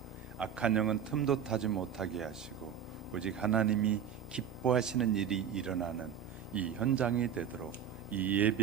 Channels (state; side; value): quieter; left; 8.5 dB